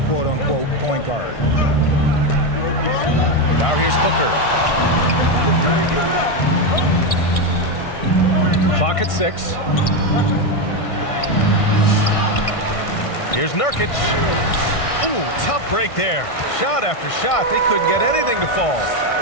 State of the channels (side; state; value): right; late; 1.6 ms